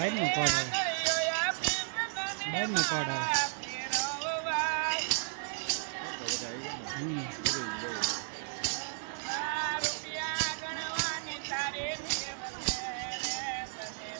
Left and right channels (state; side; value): silent; left; 55 dB below the other